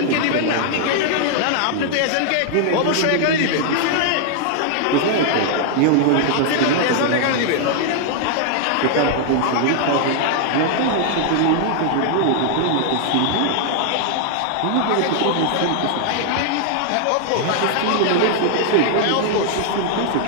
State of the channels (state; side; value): different; both; correlation 0.00